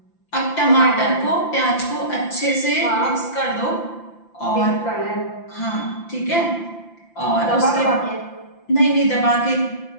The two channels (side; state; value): right; late; 5.8 ms